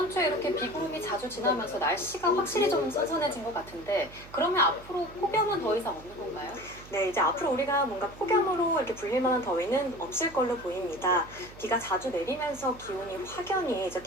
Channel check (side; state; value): right; noise; hum, 19 dB below the sound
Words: 주에 이렇게 비구름이 자주 지나면서 날씨가 확실히 좀 선선해진 것 같은데 그러면 앞으로 폭염은 더 이상 없는 건가요? 네, 이제 앞으로 우리가 뭔가 폭염으로 이렇게 불릴 만한 더위는 없을 걸로 보입니다. 비가 자주 내리면서 기온이 확연히 이제